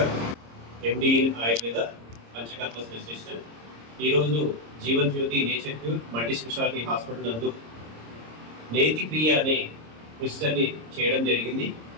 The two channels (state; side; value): late; left; 26 ms